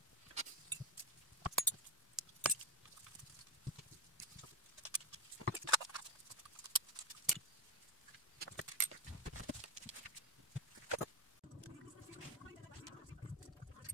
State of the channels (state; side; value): normal; both; correlation 0.07